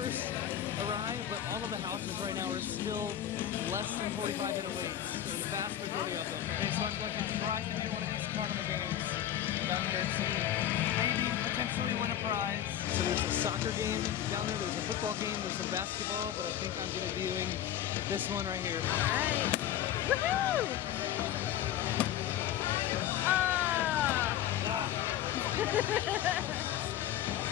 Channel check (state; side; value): quieter; right; 11.2 dB